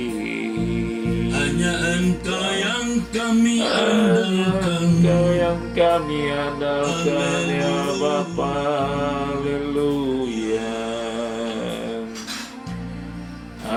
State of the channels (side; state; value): both; identical; correlation 1.00